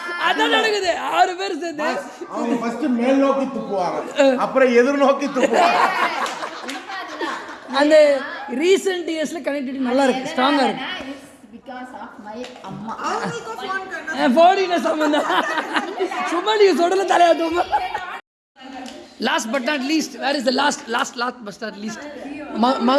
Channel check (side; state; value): both; identical; correlation 1.00